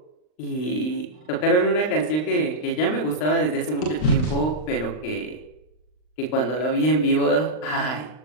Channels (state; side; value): late; right; 39 ms